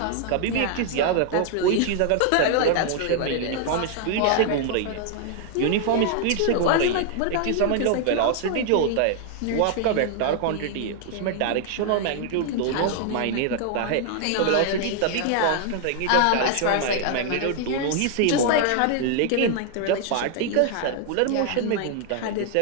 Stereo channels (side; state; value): both; different; correlation 0.00